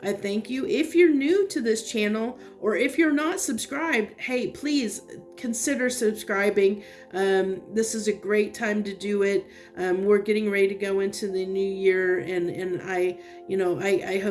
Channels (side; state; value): both; identical; correlation 1.00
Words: I thank you. If you're new to this channel, or if you're not subscribed, hey, please consider subscribing. This is a great time to do it. We're getting ready to go into the new year, and I